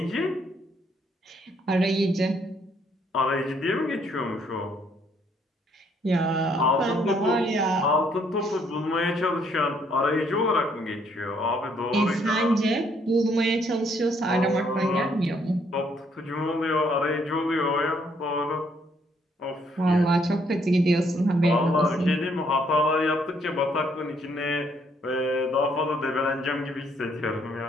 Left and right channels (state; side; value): normal; both; correlation 0.69